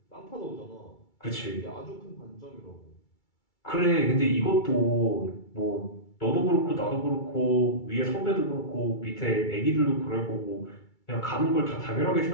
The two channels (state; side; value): late; right; 2.3 ms